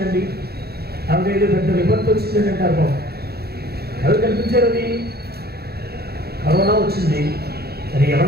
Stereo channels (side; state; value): left; late; 0.46 ms